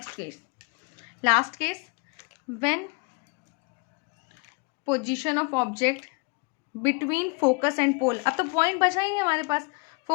case, last case, when position of object between focus and pole. अब तो पॉइंट बचा ही नहीं हमारे पास,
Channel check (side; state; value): right; quieter; 31.7 dB